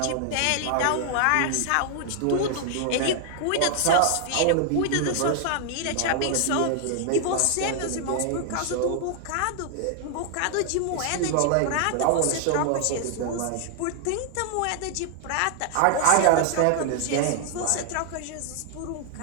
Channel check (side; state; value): both; different; correlation 0.00